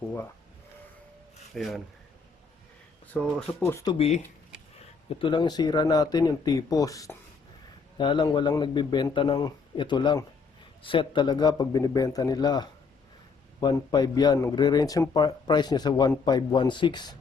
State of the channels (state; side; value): quieter; right; 5.0 dB